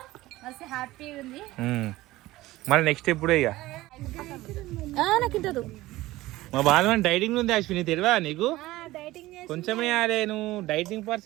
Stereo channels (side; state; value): left; quieter; 17.7 dB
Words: మస్తు హ్యాపీగా ఉంది. మళ్ళీ నెక్స్ట్ ఎప్పుడు ఇక నాకు ఇంటదు. మా బాధ డైటింగ్ ఉంది అశ్విని, తెలియదా నీకు? కొంచెమే నువ్వు డైటింగ్